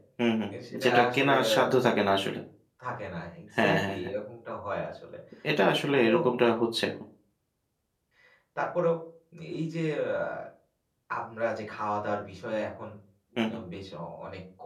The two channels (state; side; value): identical; both; correlation 1.00